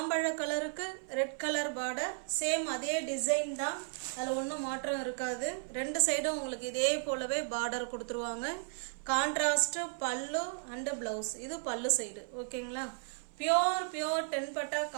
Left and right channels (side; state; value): left; silent; 55 dB below the other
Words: கலருக்கு ரெட் கலர் பார்டர். சேம் அதே டிசைன் தான், அதில் ஒன்றும் மாற்றம் இருக்காது. ரெண்டு சைடும் உங்களுக்கு இதே போலவே பார்டர் கொடுத்துருவாங்க. கான்ட்ராஸ்ட் பல்லு அண்ட் பிளவுஸ். இது பல்லு சைடு. ஓகேங்களா? பியோர் 10 பட்டா